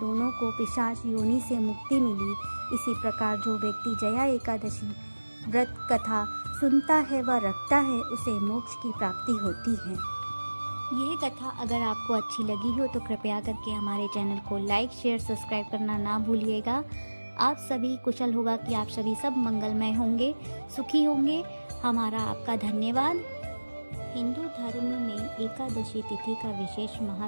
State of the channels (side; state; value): both; inverted; correlation -1.00